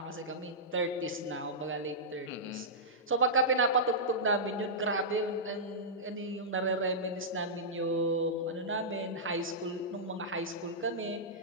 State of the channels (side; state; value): both; normal; correlation -0.13